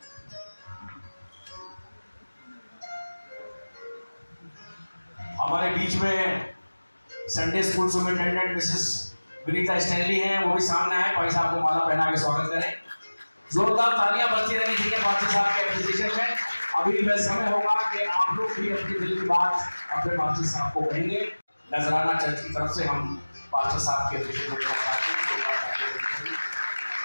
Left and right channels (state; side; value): inverted; both; correlation -1.00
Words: हमारे बीच में Sunday school superintendent Mrs Vinita Stanley हैं, वो भी सामने आए, भाई साहब को माला पहना के स्वागत करें। जोरदार तालियां बजती रहनी चाहिए पास्टर साहब के एप्रिसिएशन में। अभी वह समय होगा कि आप लोग भी अपनी दिल की बात अपने पास्टर साहब को कहेंगे। नजराना चर्च की तरफ से हम पास्टर साहब के एप्रिसिएशन को चाहते हैं।